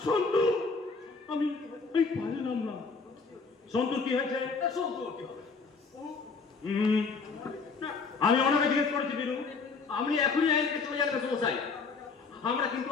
সন্তু আমি পারলাম না। সন্তু কি হয়েছে? সন্তু কি হবে? আমি ওনাকে জিজ্ঞেস করেছি বীরু। আপনি এখনই আইনকে চলে যান সমস্যায়। আমরা কিন্তু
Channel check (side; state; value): right; quieter; 4.6 dB